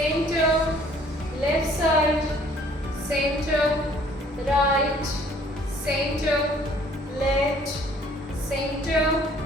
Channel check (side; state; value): both; normal; correlation 0.58